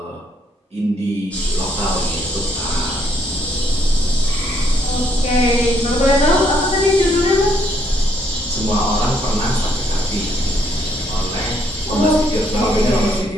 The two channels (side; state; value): both; normal; correlation 0.70